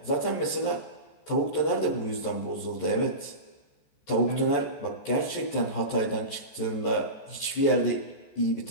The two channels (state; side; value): late; right; 14 ms